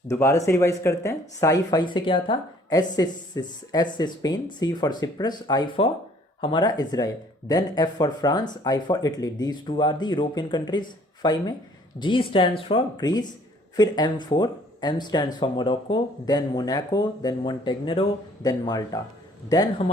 दोबारा से revise करते हैं. Sci fi से क्या था? S से Spain, C for Cyprus, I for हमारा Israel, then F for France, I for Italy. These 2 are the European countries. Five में जी स्टैंड्स फॉर ग्रीस, फिर M4, M stands for Morocco, then Monaco, then Montenegro, then Malta. Then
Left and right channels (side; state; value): both; normal; correlation 0.58